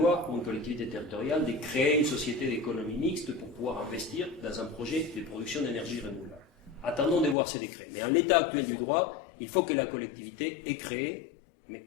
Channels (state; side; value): drops out; right; at 7.4 s